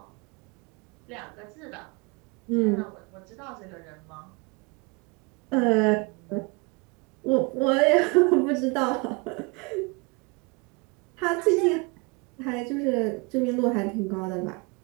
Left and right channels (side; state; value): left; quieter; 28.8 dB